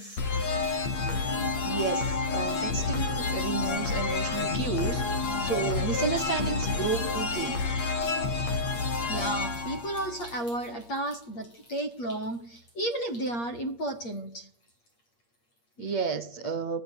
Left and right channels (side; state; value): right; late; 8.5 ms